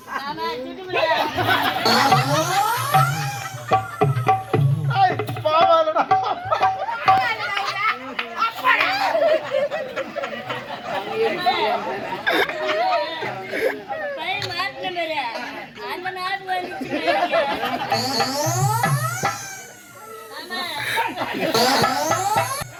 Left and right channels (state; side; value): identical; both; correlation 1.00